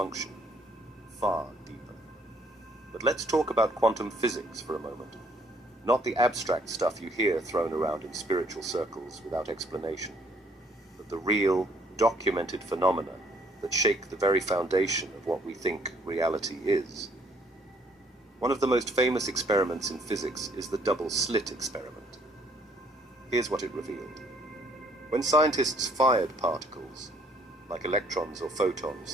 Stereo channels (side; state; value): both; normal; correlation 0.64